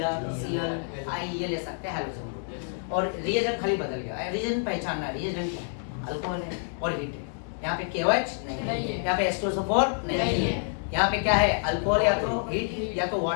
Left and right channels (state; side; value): silent; right; digital silence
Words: Cl I, ये ले सकते हैं हाइड्रोजन ग्रुप, और रिएजेंट खाली बदल गया। रिएजेंट पहचानना, रिएजेंट क्या है? अल्कोहल है और हीट है। यहाँ पे KOH नहीं है, यहाँ पे H2SO4 नहीं है, यहाँ पे क्या है? अल्कोहल या तो हीट या तो